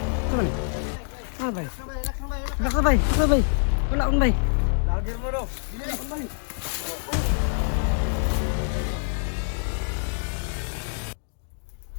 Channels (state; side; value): silent; right; digital silence